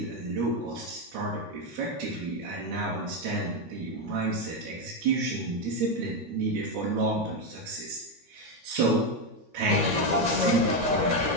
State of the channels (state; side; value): late; left; 13 ms